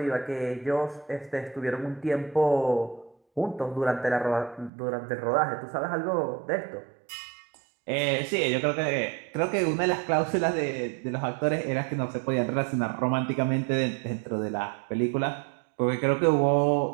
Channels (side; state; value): left; drops out; at 4.7 s